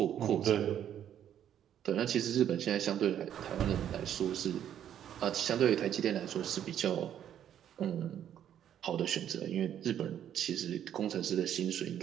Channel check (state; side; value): quieter; left; 10.1 dB